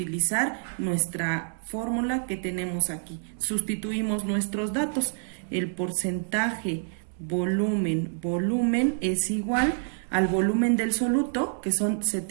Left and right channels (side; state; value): left; silent; digital silence